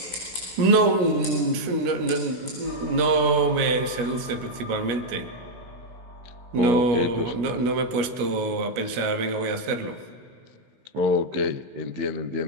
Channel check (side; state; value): left; late; 17 ms